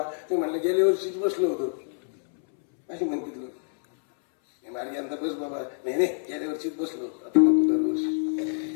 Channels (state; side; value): silent; right; 60 dB below the other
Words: ते म्हणलं गेल्या वर्षीच बसलो होतो, अशी म्हणते लोक. मारी यंदा बस बाबा, नाही नाही गेल्या वर्षीच बसलो, आता नको दरवर्षी